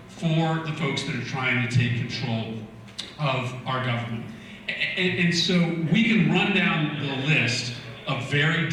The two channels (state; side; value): identical; both; correlation 1.00